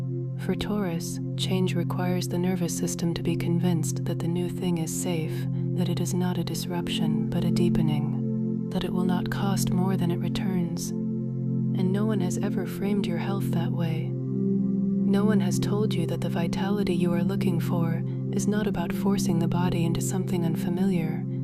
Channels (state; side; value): identical; both; correlation 1.00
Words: For Taurus, change requires the nervous system to be convinced that the new thing is safe, that it is not a disruption but a deepening, that it will not cost more than it returns. And no one has ever framed your health that way. No one has told you that the vitality you are looking for is not about forcing the body into something unfamiliar,